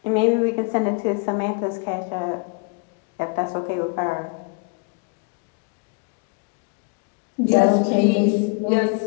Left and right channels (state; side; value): quieter; right; 33.8 dB